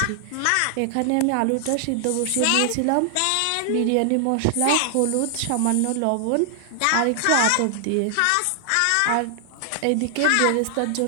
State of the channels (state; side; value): different; both; correlation 0.00